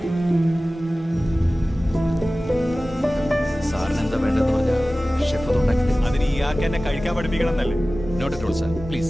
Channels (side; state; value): both; normal; correlation 0.97